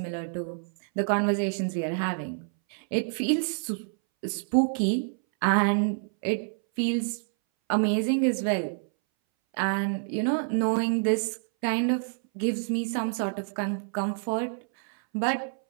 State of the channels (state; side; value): silent; left; 60 dB below the other